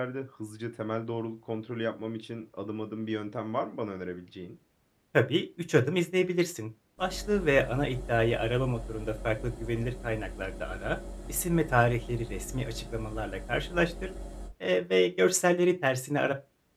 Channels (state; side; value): identical; both; correlation 1.00